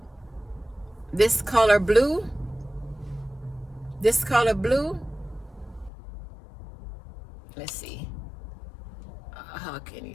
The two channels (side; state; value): right; drops out; at 5.9 s